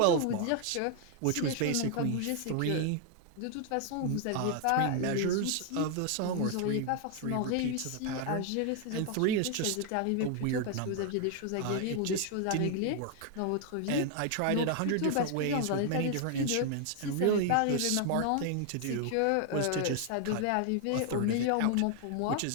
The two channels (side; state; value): both; different; correlation 0.00